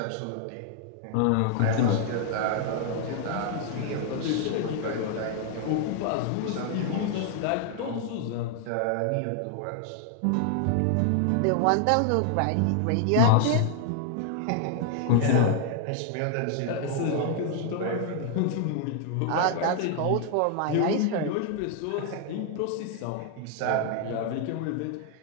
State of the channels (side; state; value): both; different; correlation 0.00